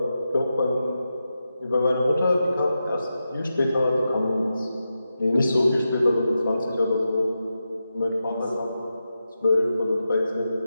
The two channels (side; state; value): both; inverted; correlation -0.89